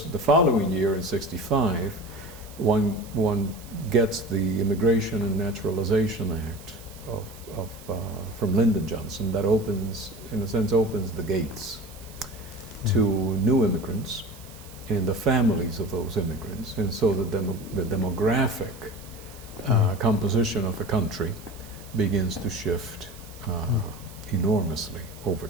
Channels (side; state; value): right; noise; hiss, 20 dB below the sound